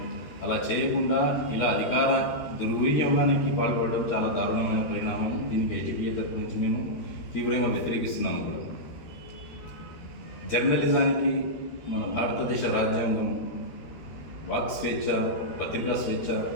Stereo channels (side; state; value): right; late; 13 ms